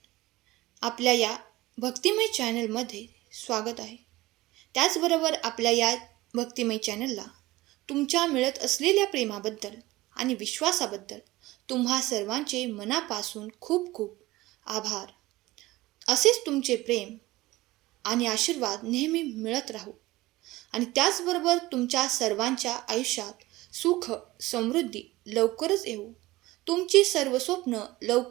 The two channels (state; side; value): quieter; left; 18.7 dB